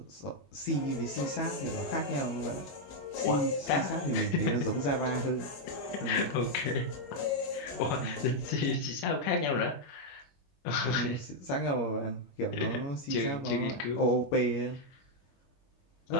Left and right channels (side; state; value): right; late; 21 ms